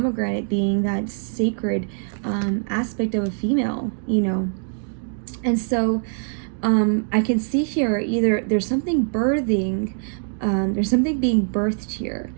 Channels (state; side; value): silent; left; 62 dB below the other